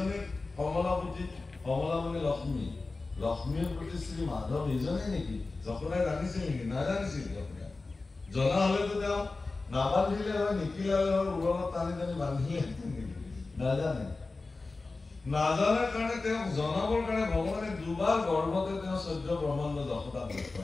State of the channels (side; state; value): right; quieter; 3.6 dB